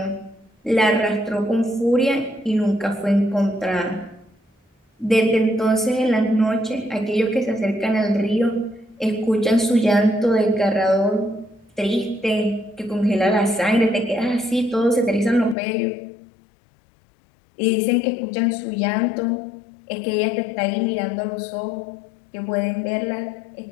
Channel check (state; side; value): drops out; right; at 15.6 s